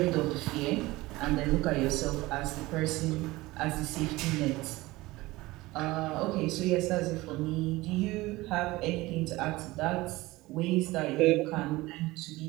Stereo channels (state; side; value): quieter; left; 19.9 dB